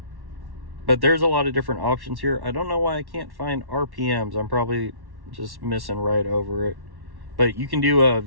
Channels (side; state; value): left; late; 1.1 ms